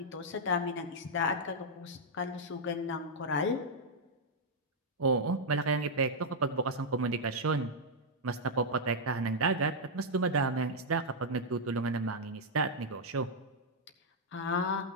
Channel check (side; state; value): both; normal; correlation -0.05